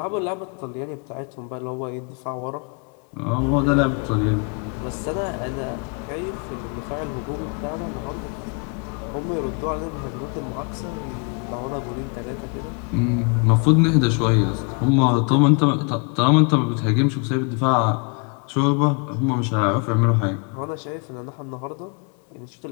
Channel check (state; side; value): quieter; right; 36.8 dB